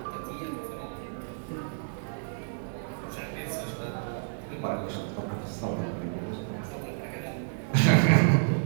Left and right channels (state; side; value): silent; left; digital silence